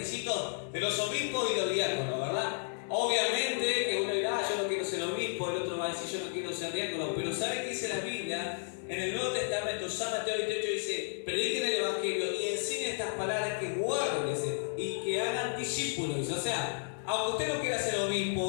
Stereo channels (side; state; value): right; silent; digital silence